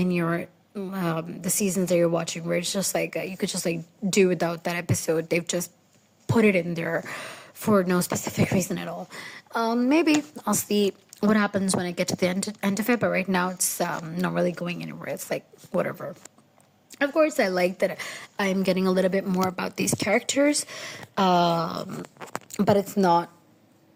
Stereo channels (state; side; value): identical; both; correlation 1.00